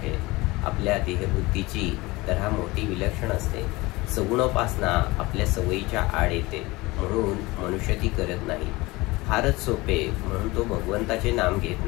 आपल्या देहबुद्धीची तऱ्हा मोठी विलक्षण असते. सगुणोपासना आपल्या सवयीच्या आड येते, म्हणून मनुष्य ती करत नाही. फारच सोपे म्हणून तो भगवंताचे नाम घेत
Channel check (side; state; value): right; quieter; 21.8 dB